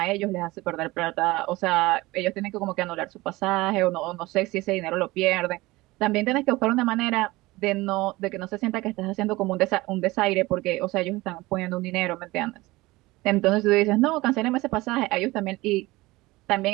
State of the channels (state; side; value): quieter; left; 20.4 dB